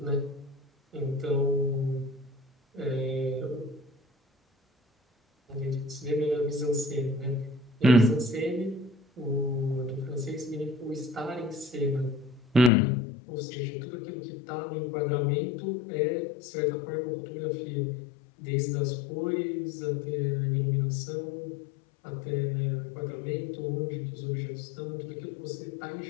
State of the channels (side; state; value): right; drops out; at 12.7 s